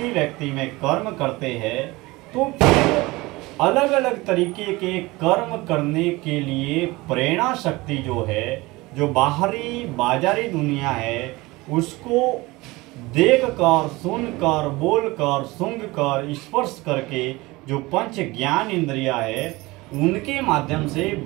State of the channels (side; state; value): left; quieter; 21.6 dB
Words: व्यक्ति में कर्म करते हैं, तो फिर अलग अलग तरीके के कर्म करने के लिए प्रेरणा शक्ति जो है, जो बाहरी बाजारी दुनिया है, उसको देखकर, सुनकर, बोलकर, सूंघकर, स्पर्श करके जो पंच ज्ञान इंद्रिया है, उनके माध्यम से